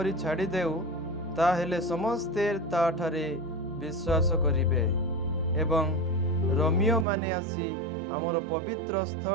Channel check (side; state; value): left; drops out; at 7.1 s